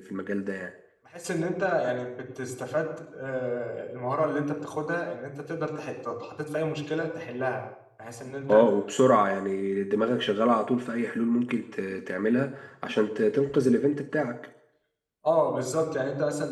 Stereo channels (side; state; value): both; identical; correlation 1.00